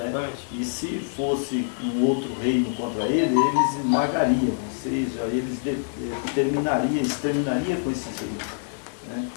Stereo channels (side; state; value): right; silent; 61 dB below the other